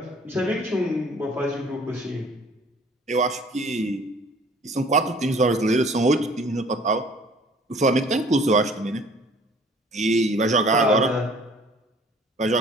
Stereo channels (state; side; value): normal; both; correlation 0.53